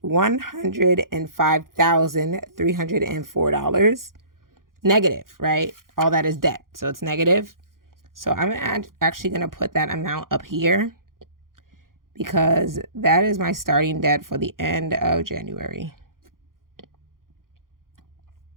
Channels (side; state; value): left; late; 0.91 ms